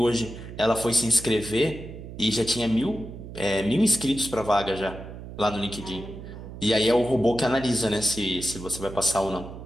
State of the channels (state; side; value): noise; right; hum, 12 dB below the sound